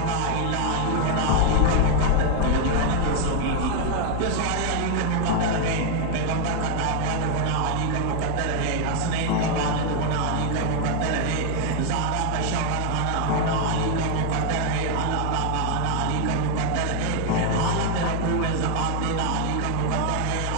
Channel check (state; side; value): different; both; correlation 0.00